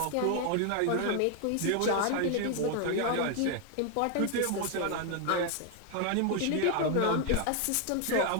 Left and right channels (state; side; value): different; both; correlation 0.00